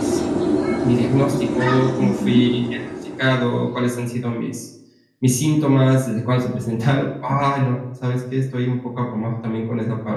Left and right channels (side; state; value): both; identical; correlation 1.00